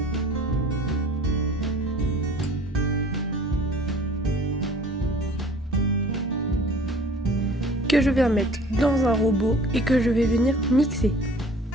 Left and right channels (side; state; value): both; normal; correlation 0.48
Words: Que je viens mettre dans un robot et que je vais venir mixer.